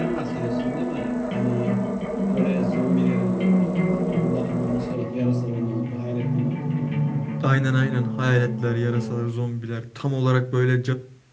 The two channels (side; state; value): both; identical; correlation 1.00